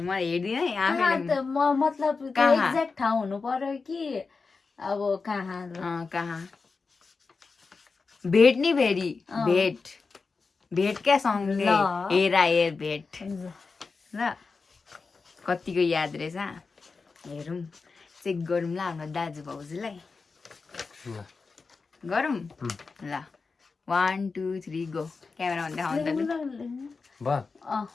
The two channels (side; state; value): right; quieter; 4.5 dB